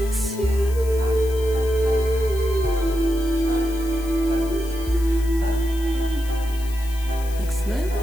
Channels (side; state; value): left; noise; hiss, 17 dB below the sound